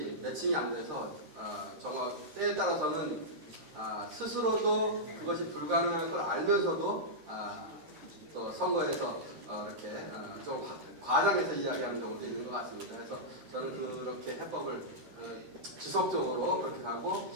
매칭이 안 돼서 저거 때에 따라서는 스스로도 그것이 불가능할 걸 알면서도 또 선거에서 이렇게 좀 과장해서 이야기하는 경우도 있는 것 같습니다. 그래서 저는 그렇게 해법을 지속적으로 그렇게 가고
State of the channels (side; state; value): left; late; 13 ms